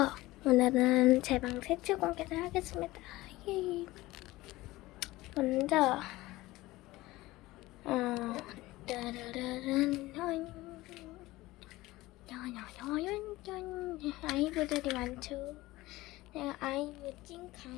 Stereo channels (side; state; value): right; quieter; 18.7 dB